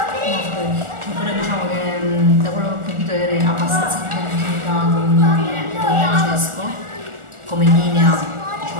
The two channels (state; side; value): late; left; 1.4 ms